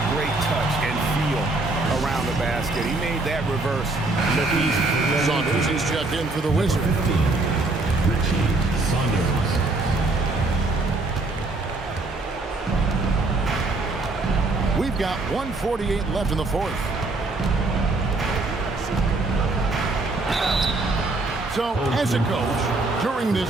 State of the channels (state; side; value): quieter; left; 3.1 dB